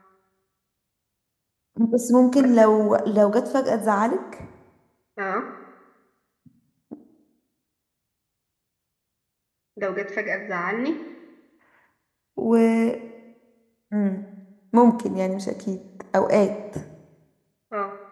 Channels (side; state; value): both; identical; correlation 1.00